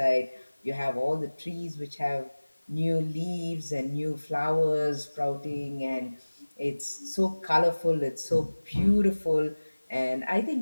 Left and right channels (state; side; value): inverted; both; correlation -1.00